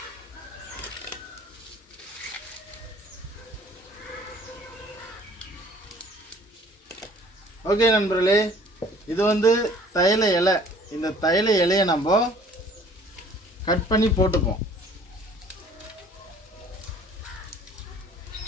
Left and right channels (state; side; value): normal; both; correlation 0.53